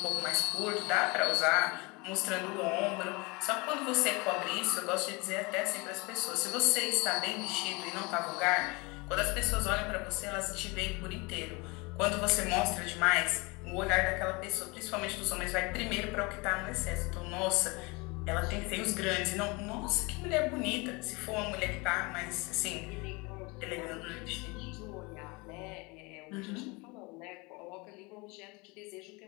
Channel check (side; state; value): right; quieter; 26.6 dB